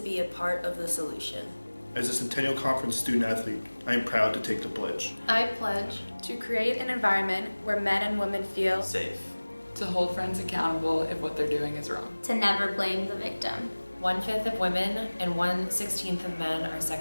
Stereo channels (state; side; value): inverted; both; correlation -1.00